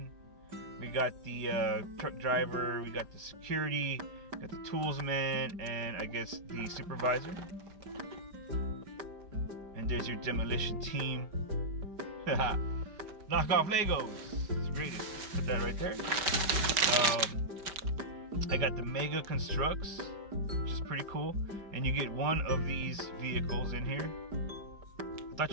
We got the truck driver. We got the security. Got the tools man, and I guess the supervisor. And there's your Demolition Team. Knockoff Legos. It's the greatest. Put that right there. I got the Mega Constructs, which is pretty cool. And you get one of these vehicles in here. I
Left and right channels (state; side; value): late; left; 5.1 ms